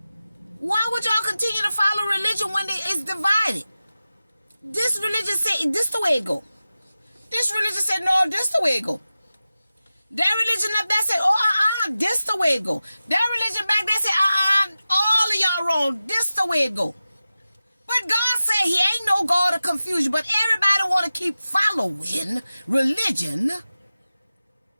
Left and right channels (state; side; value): inverted; both; correlation -0.94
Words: Why would y'all continue to follow religion when it's divided? This religion say this the way it go. This religion said no, this the way it go. That religion up there said this the way it go. That religion back there said all of y'all wrong. This the way it go. But God said He ain't no God of confusion. But everybody want to keep following religion.